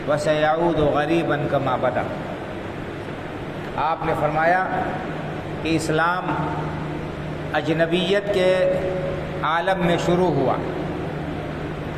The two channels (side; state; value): both; identical; correlation 1.00